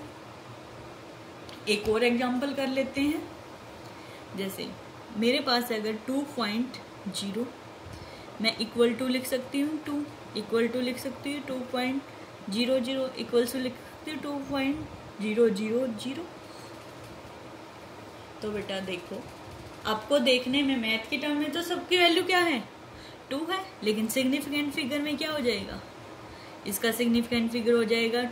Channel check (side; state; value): both; identical; correlation 1.00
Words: एक और एग्जांपल कर लेते हैं। जैसे मेरे पास अगर 2.0, मैं इक्वल टू लिख सकती हूँ 2, इक्वल टू लिख सकती हूँ 2.00, इक्वल टू लिख सकती हूँ 2.000। तो बेटा देखो, आपको देखने में मैथ के टर्म में तो सबकी वैल्यू क्या है? 2 है, लेकिन सिग्निफिकेंट फिगर में क्या हो जाएगा? इसका सिग्निफिकेंट फिगर हो जाएगा